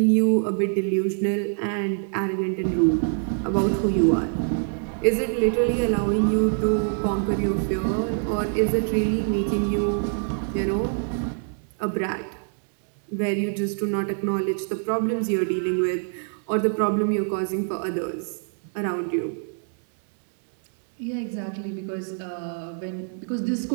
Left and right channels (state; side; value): silent; left; 62 dB below the other